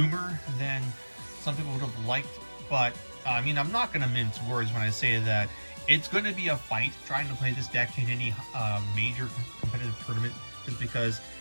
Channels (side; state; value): both; inverted; correlation -1.00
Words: than some people would have liked, but I mean, I'm not going to mince words when I say that it's going to be a fight trying to play this deck in any major competitive tournament, just because,